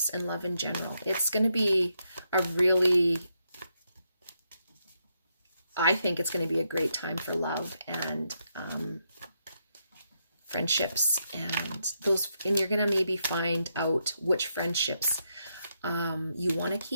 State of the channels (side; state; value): both; inverted; correlation -0.80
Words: and love in general. It's going to be a really, I think it's going to be a great time for love and friendships, and you're going to maybe find out which friendships you want to